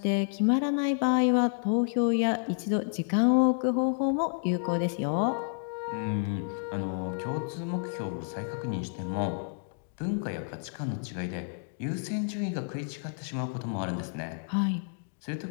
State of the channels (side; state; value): right; silent; digital silence